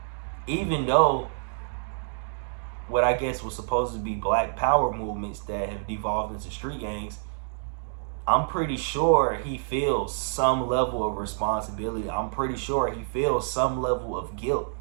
Even though what I guess was supposed to be black power movements that have devolved into street gangs, I'm pretty sure he feels some level of responsibility. I'm pretty sure he feels some level of guilt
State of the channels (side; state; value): left; silent; digital silence